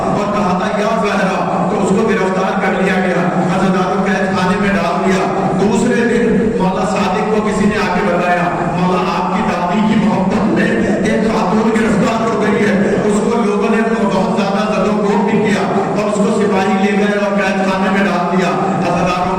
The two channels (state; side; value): identical; both; correlation 1.00